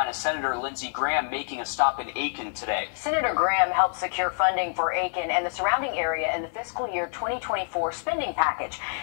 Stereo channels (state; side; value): silent; right; 60 dB below the other